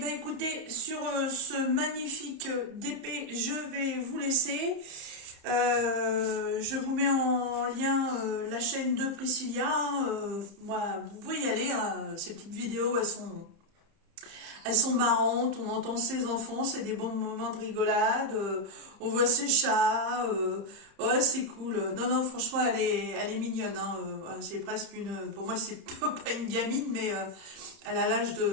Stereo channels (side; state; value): left; late; 30 ms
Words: écoutez, sur ce magnifique DP, je vais vous laisser. Je vous mets en lien la chaîne de Priscilla. Moi, vous pouvez y aller, hein, ces petites vidéos, elles sont marrantes, on entend ses enfants, c'est des bons moments de rigolade, on voit ses chats, ouais c'est cool. Non, non, franchement elle est mignonne, hein, c'est presque pour moi c'est pas une gamine, mais elle a l'âge